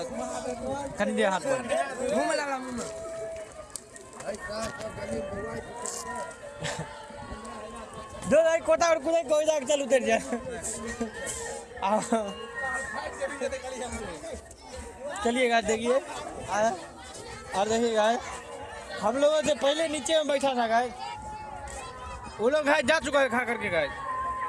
करी दे हाथ पर मुंह में लगा मुंह में दो भाई कोटा और कुछ कोई जाके चल उतर जा चलिए गाइस देखिए और देखिए गाइस हम लोगों से पहले नीचे में बैठा था गाइस वो लोग गाइस जा चुका है खा करके गाइस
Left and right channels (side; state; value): both; identical; correlation 1.00